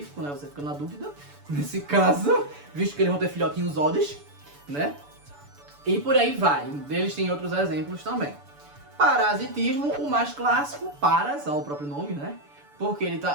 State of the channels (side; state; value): left; late; 6.9 ms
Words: né? Você fica na dúvida nesse caso, visto que eles vão ter filhotinhos Odds, né? E por aí vai. Eles têm outros exemplos também. Parasitismo, o mais clássico, Paras, ao próprio nome, né? Porque